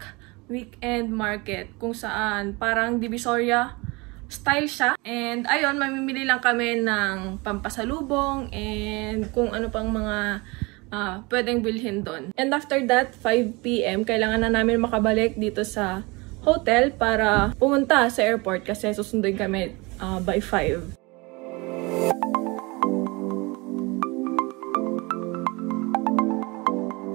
Weekend Market kung saan parang Divisoria style siya. And ayun, mamimili lang kami ng pampasalubong and kung ano pang mga pwedeng bilhin doon. And after that, 5 PM, kailangan na namin makabalik dito sa hotel para pumunta sa airport kasi susunduin kami by 5.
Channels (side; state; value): left; quieter; 25.8 dB